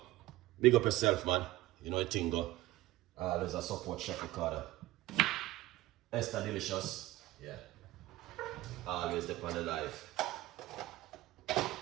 big up yourself, man. You know it go. Always a support Chef Ricardo. Esther Delicious, yeah. Always depend on life.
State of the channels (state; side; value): quieter; left; 16.9 dB